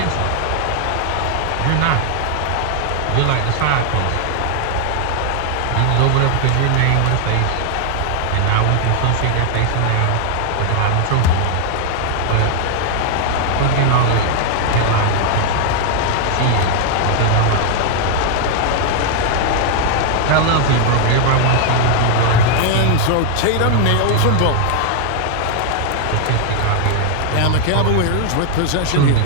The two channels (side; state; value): both; different; correlation 0.00